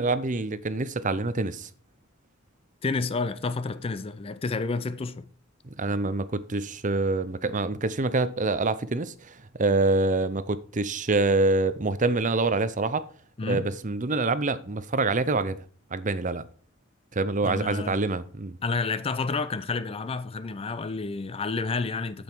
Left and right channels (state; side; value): normal; both; correlation 0.25